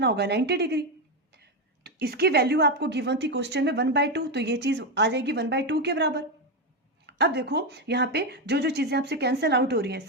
होगा? 90 डिग्री। तो इसकी वैल्यू आपको गिवन थी क्वेश्चन में 1/2, तो ये चीज आ जाएगी 1/2 के बराबर। अब देखो यहाँ पे जो जो चीजें आपसे कैंसिल आउट हो रही है,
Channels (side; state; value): both; normal; correlation 0.09